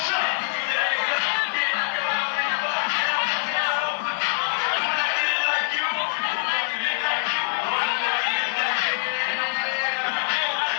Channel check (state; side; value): silent; right; 62 dB below the other